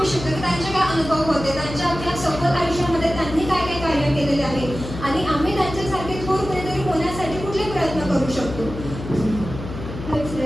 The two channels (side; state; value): left; noise; hum, 9 dB below the sound